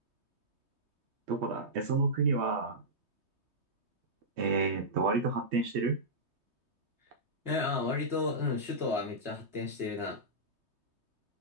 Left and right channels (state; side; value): late; left; 3.2 ms